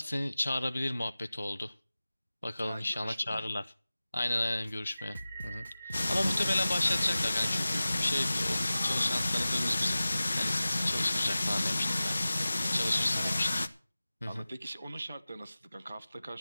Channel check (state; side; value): inverted; both; correlation -0.97